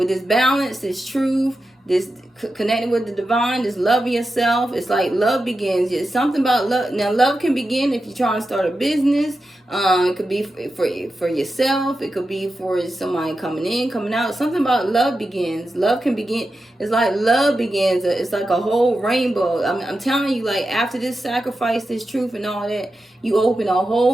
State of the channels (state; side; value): normal; both; correlation 0.90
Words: this balance, this truth, this connecting with the divine, this love of yourself. It's like love begins. It's something about love. Now, love can begin if you're trying to start a business. It could be for yourself. It could be for somebody coming in, coming out. Something about love begins. Love can begin. It's like love begins. It's like a whole rainbow. I'm telling you, like after this sacrifice, this truth and all that, you open a